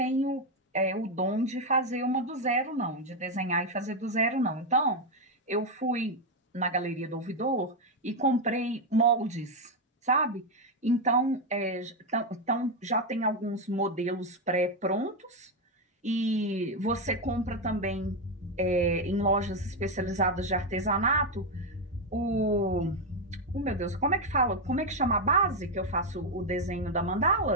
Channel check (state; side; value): normal; both; correlation 0.05